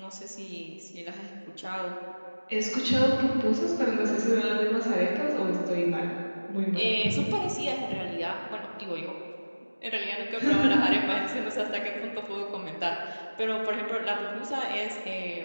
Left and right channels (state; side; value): inverted; both; correlation -1.00